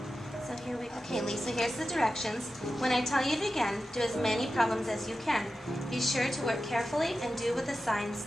So here we go. Okay, Lisa, here's the directions. When I tell you to begin, do as many problems as you can. Be sure to work carefully and do what the signs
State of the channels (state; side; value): normal; both; correlation 0.93